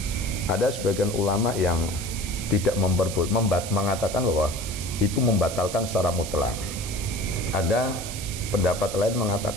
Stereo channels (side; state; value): right; noise; hiss, 9 dB below the sound